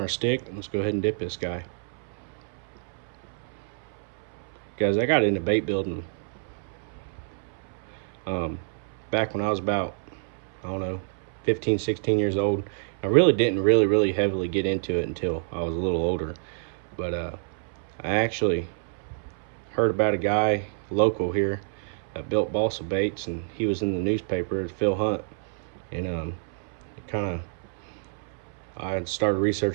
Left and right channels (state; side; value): silent; left; 60 dB below the other